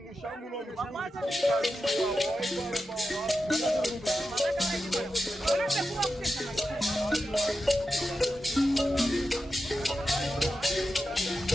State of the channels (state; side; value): normal; both; correlation 0.90